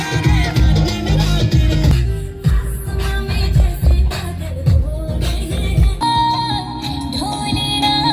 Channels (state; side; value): identical; both; correlation 1.00